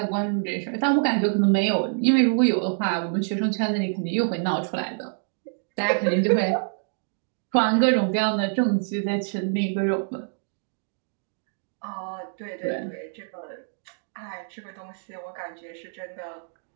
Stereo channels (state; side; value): silent; left; digital silence